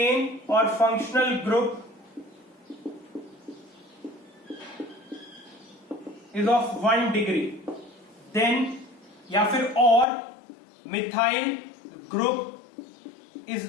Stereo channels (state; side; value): drops out; right; at 10.1 s